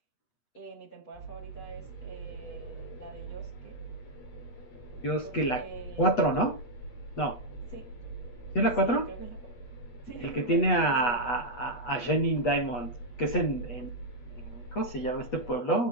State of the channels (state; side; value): late; right; 8.2 ms